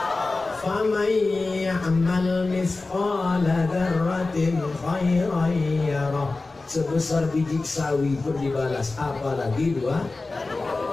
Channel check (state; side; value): quieter; right; 3.5 dB